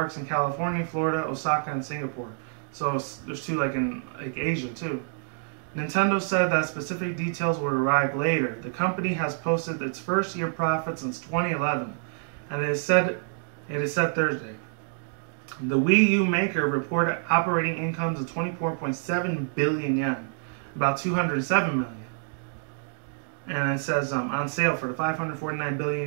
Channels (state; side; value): silent; left; digital silence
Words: in California, Florida, Osaka, and Singapore. So there's two like in Asia too. Nintendo said that specific details will arrive later. The company has posted its first year profit since 2011, and it is set Thursday. The Wii U maker reported operating incomes of 24.7 billion yen, about 207 million. And it says on sale for the 549